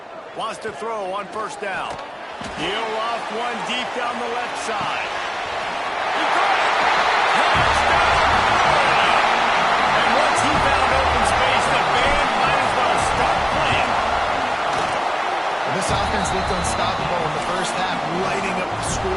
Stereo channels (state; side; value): identical; both; correlation 1.00